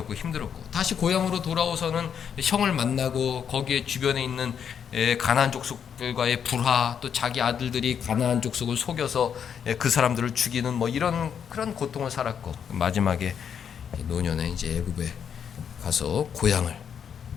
힘들었고, 다시 고향으로 돌아오서는 형을 만나고 거기에 주변에 있는 가나안 족속들과의 불화, 또 자기 아들들이 가나안 족속을 속여서 그 사람들을 죽이는 뭐 이런 그런 고통을 살았고, 마지막에 노년에 이제 애굽에 가서 고향을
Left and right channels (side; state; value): right; quieter; 7.8 dB